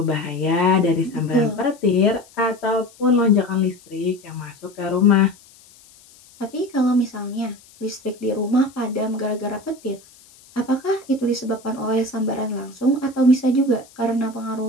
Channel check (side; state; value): left; noise; hiss, 26 dB below the sound